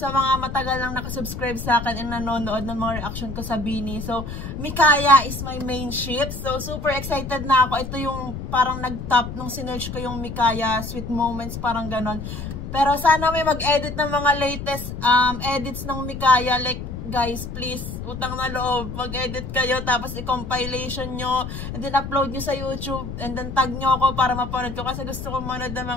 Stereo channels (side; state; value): left; noise; rumble, 7 dB below the sound